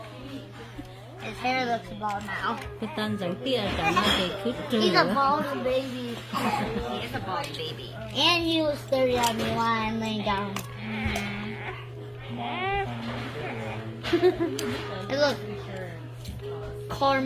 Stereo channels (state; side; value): identical; both; correlation 1.00